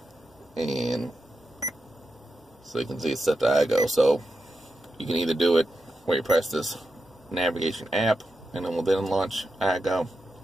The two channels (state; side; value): normal; both; correlation 0.88